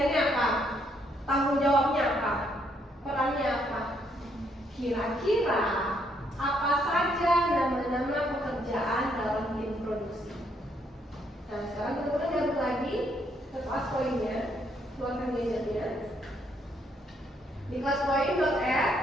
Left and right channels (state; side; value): normal; both; correlation 0.72